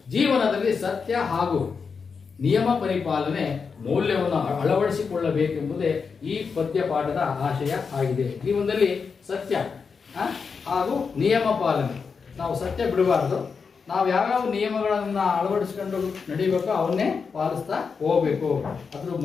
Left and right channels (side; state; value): right; quieter; 5.5 dB